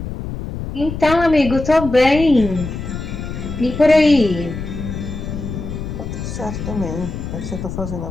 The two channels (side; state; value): left; noise; rumble, 7 dB below the sound